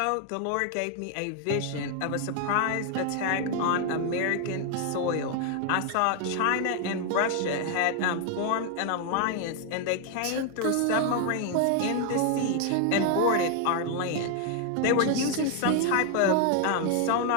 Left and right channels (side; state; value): both; different; correlation 0.00